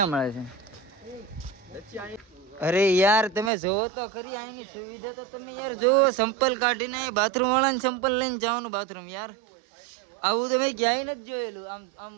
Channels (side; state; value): left; drops out; at 3.5 s